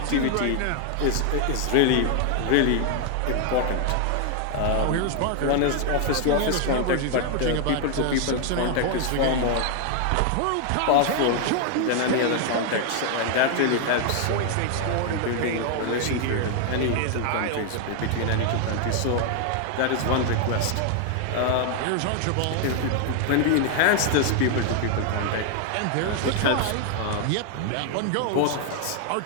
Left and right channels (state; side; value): different; both; correlation 0.00